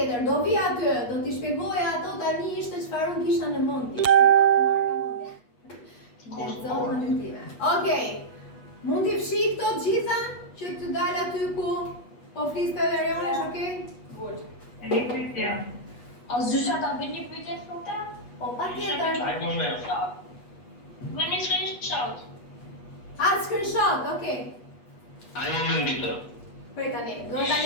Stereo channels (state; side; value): late; right; 8.3 ms